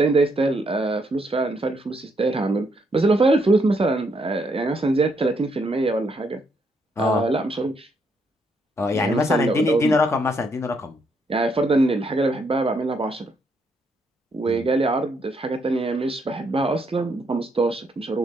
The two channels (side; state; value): both; normal; correlation 0.75